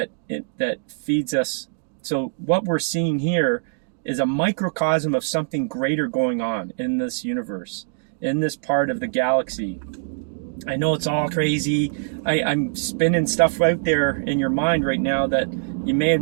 feeds us. So what we're seeing here is a microcosm of something greater going on in this universe, in this part of the galaxy. I know it's all crazy. I'm spinning stuff out there in your mind right now that you may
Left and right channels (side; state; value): left; silent; digital silence